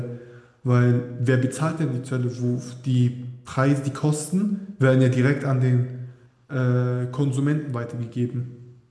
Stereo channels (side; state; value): both; identical; correlation 1.00